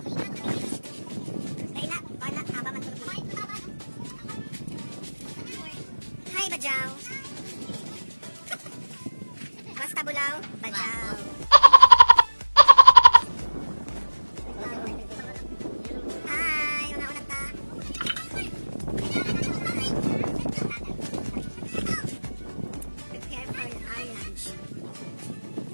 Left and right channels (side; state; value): both; inverted; correlation -1.00